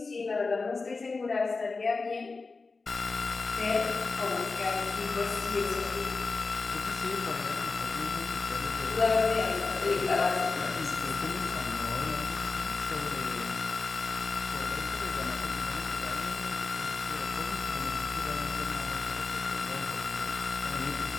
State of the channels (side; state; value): right; quieter; 4.0 dB